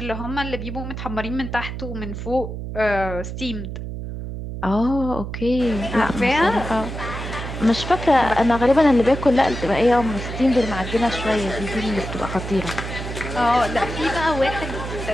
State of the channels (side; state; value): right; noise; hum, 7 dB below the sound